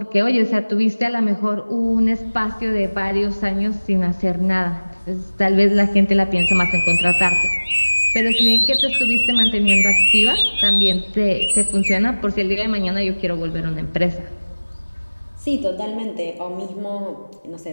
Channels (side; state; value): both; inverted; correlation -1.00